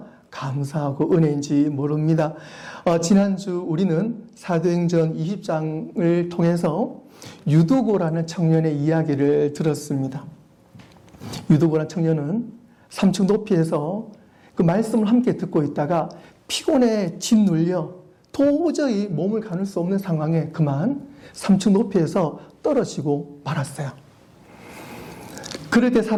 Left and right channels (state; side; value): identical; both; correlation 1.00